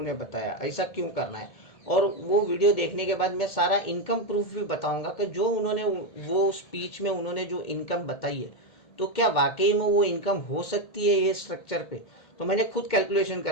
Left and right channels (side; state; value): right; late; 2.1 ms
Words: बताया ऐसा क्यों करना है, और वो वीडियो देखने के बाद मैं सारा इनकम प्रूफ भी बताऊंगा कि जो उन्होंने वो स्पीच में उन्होंने जो इनकम बताई है तो क्या वाकई में वो इनकम हो सकती है ये स्ट्रक्चर पे। तो मैंने खुद कैलकुलेशन